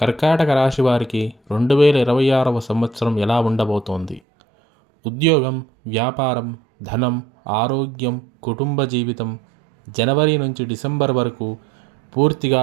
రాశి వారికి 2026వ సంవత్సరం ఎలా ఉండబోతోంది? ఉద్యోగం, వ్యాపారం, ధనం, ఆరోగ్యం, కుటుంబ జీవితం జనవరి నుంచి డిసెంబర్ వరకు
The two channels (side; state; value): left; drops out; at 4.2 s